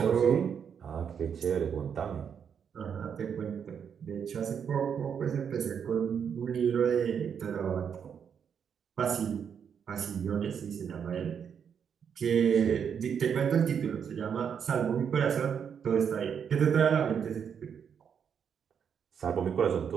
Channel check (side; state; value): left; quieter; 7.5 dB